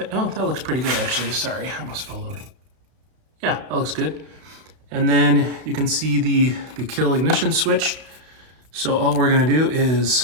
looks pretty good actually, sorry, I almost fell over. Yeah, that looks good. And then you can see the kill ignition switch. So all we're gonna do is,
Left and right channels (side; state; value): left; late; 32 ms